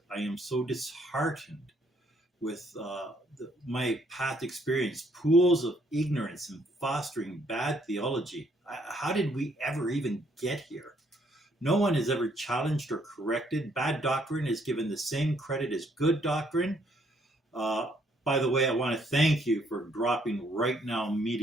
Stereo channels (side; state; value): both; normal; correlation 0.69